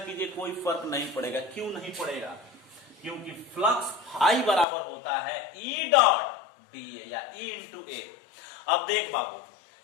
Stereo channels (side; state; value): right; drops out; at 4.7 s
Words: कोई फर्क नहीं पड़ेगा। क्यों नहीं पड़ेगा, क्योंकि फ्लक्स फाई बराबर होता है E.dA या E/A। अब देख बाबू,